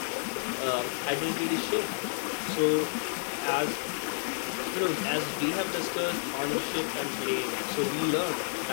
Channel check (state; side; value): silent; right; 58 dB below the other